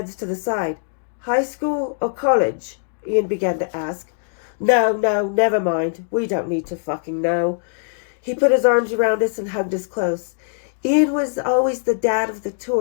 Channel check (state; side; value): silent; right; digital silence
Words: to the side. High school or college? Ian began to ask. No, never mind. We don't need to fucking know. He put his arms around us and hugged us close. Ian was always the dad of the